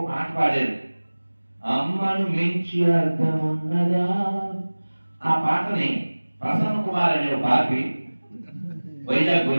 పాట పాడారు, అమ్మను మించి అర్థం ఉన్నదా. ఆ పాటని ప్రసన్న కుమార్ అనే బాపి వైజాగ్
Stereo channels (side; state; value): both; inverted; correlation -1.00